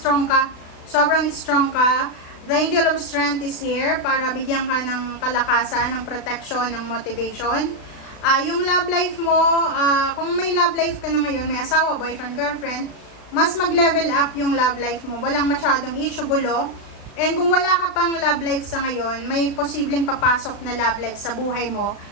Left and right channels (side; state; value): right; late; 36 ms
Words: ka. Sobrang strong ka. The Angel of Strength is here para bigyan ka ng kalakasan, ng protection, ng motivation. Yung love life mo, kung may love life ka na ngayon, may asawa, boyfriend, girlfriend, mas mag-level up yung love life mo. Walang masyadong issue, gulo. And kung wala ka pang love life sa ngayon, may posibleng papasok na love life sa buhay mo